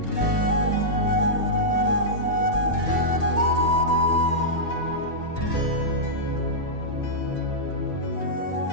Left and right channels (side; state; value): left; late; 1.8 ms